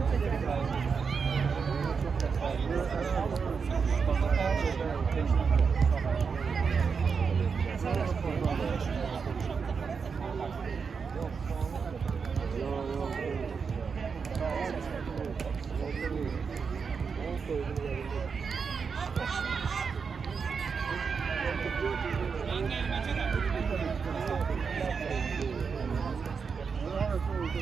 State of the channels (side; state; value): left; quieter; 5.7 dB